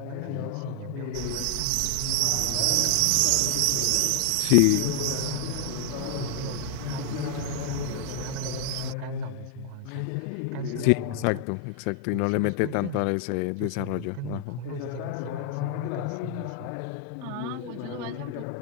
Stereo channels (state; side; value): different; both; correlation 0.00